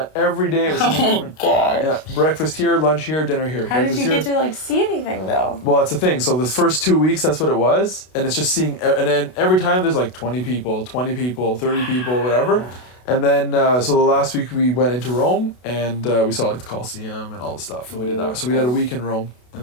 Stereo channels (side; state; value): right; late; 32 ms